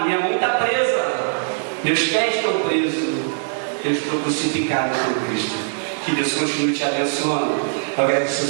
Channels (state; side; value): silent; left; digital silence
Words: minha mão está presa, meus pés estão presos. Eu estou crucificado por Cristo. Que Deus continue te abençoando. Eu agradeço